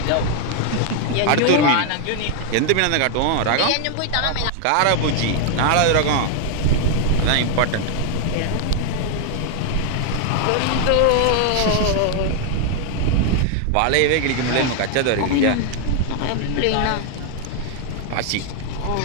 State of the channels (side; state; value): both; different; correlation 0.00